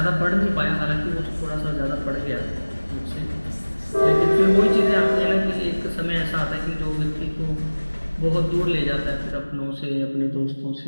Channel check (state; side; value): inverted; both; correlation -1.00